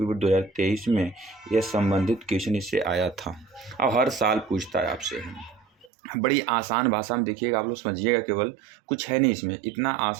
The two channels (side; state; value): left; drops out; at 5.9 s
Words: बोर्ड 2023 में यह संबंधित क्वेश्चन इससे आया था। अब हर साल पूछता है आपसे। बड़ी आसान भाषा में देखिएगा, आप लोग समझिएगा, केवल कुछ है नहीं इसमें, इतना